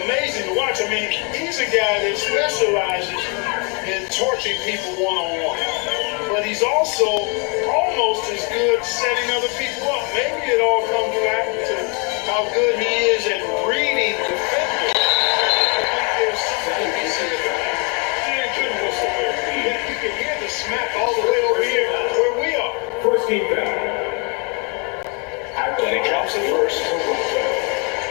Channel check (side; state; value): right; quieter; 34.1 dB